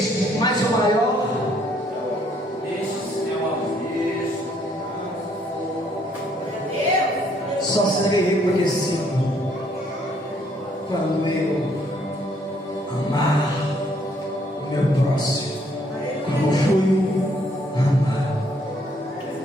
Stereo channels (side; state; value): both; normal; correlation 0.67